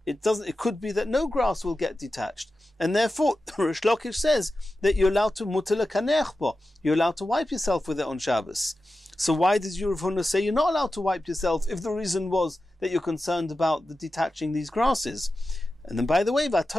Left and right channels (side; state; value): both; normal; correlation 0.93